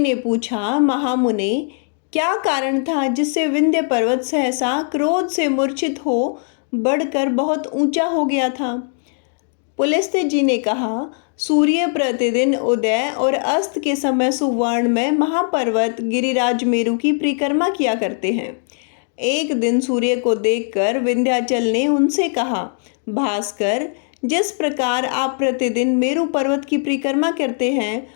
पूछा, महामुने, क्या कारण था जिससे विंध्य पर्वत सहसा क्रोध से मूर्छित हो बढ़कर बहुत ऊंचा हो गया था? पुलस्त्य जी ने कहा, सूर्य प्रतिदिन उदय और अस्त के समय सुवर्ण में महापर्वत गिरिराज मेरु की परिक्रमा किया करते हैं। एक दिन सूर्य को देखकर विंध्याचल ने उनसे कहा, भास्कर, जिस प्रकार आप प्रतिदिन मेरु पर्वत की परिक्रमा करते हैं,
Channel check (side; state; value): right; silent; 60 dB below the other